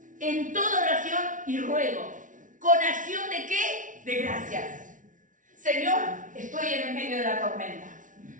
en toda oración y ruego, con acción ¿de qué? De gracias. Señor, estoy en el medio de la tormenta.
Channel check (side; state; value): left; late; 0.38 ms